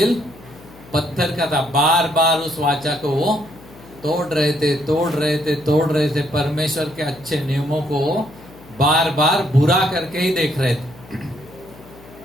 पत्थर का था। बार बार उस वाचा को वो तोड़ रहे थे। परमेश्वर के अच्छे नियमों को बार बार बुरा करके ही देख रहे थे।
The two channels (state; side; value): noise; left; hum, 22 dB below the sound